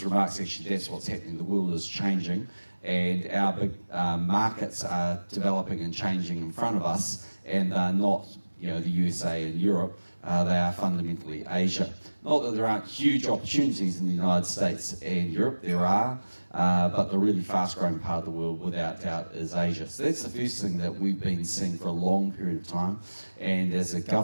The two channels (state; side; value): inverted; both; correlation -1.00